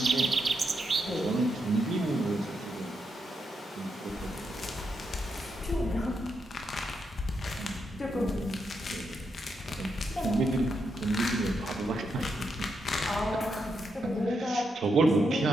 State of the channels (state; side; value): normal; both; correlation 0.82